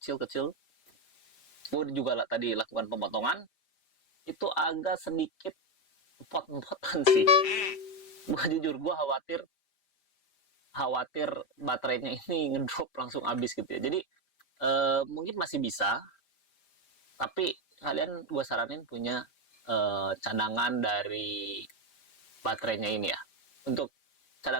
gue juga tadi lakukan pemotongan, itu agak sedikit pot-potan sih. Gue jujur, gue khawatir baterainya ini ngedrop langsung habis gitu ya. Jadi mungkin masih bisa, tapi kalian gue saranin punya cadangan dari baterainya ini ya. Untuk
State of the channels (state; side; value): late; right; 5.0 ms